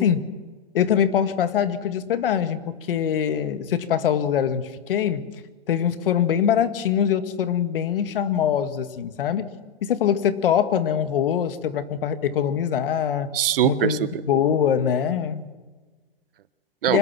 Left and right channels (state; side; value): quieter; right; 6.1 dB